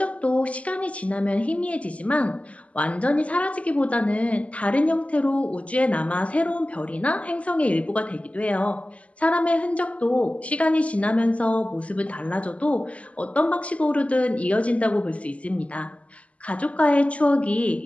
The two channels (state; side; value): late; right; 0.065 ms